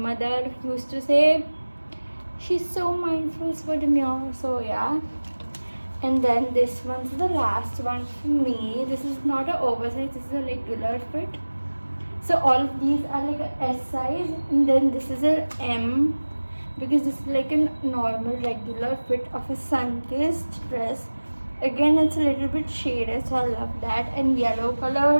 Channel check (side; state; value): both; inverted; correlation -1.00